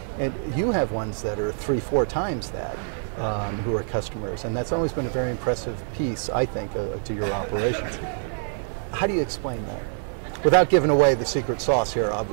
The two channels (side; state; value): left; silent; digital silence